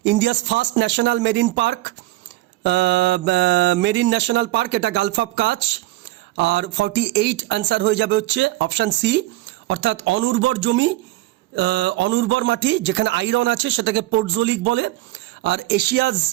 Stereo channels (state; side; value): quieter; left; 17.6 dB